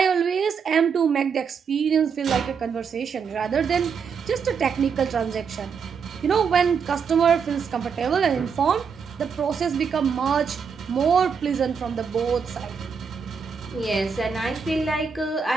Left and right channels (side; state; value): left; quieter; 6.2 dB